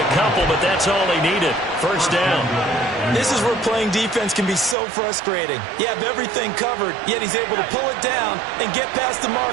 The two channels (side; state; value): left; drops out; at 4.8 s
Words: couple, but that's all he needed. 1st down. This is where playing defense can be so frustrating. You have everything covered, yet he's able to pull it down and get past the